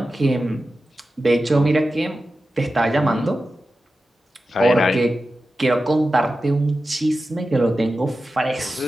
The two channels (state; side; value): normal; both; correlation 0.93